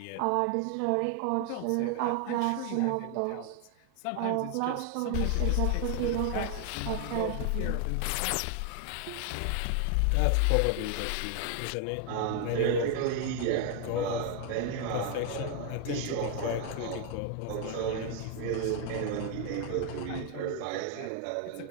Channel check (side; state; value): both; different; correlation 0.01